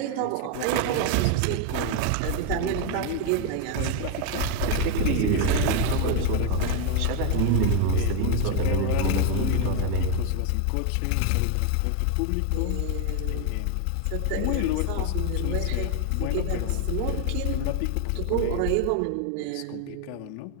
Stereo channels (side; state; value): both; different; correlation 0.01